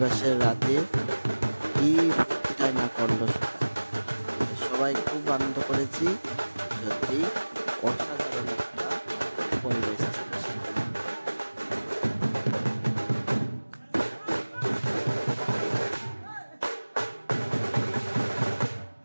রাতে কি ফুর্তিটাই না করলো সবাই, খুব আনন্দ করেছি। সত্যি অসাধারণ একটা পরিবেশ ছিল।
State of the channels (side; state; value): both; inverted; correlation -1.00